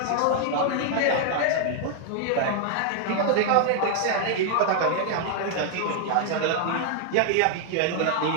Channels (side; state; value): both; different; correlation 0.00